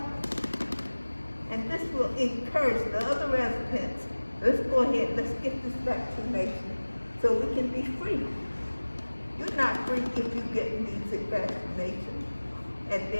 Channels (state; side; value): inverted; both; correlation -1.00